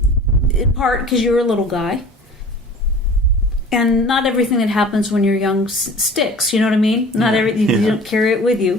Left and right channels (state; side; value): normal; both; correlation 0.44